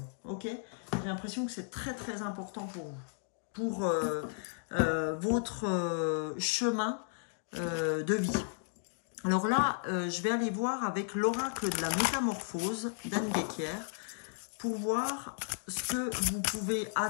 Ok? J'ai l'impression que c'est très très important pour vous, pour votre chemin de vie. Alors là, je vais aller voir avec l'oracle de la métamorphose d'Anne Guéquière pour voir ce que vous pouvez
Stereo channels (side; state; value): right; silent; digital silence